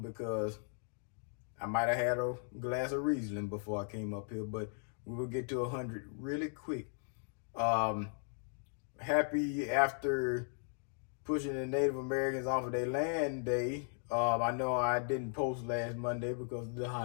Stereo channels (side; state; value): right; silent; 53 dB below the other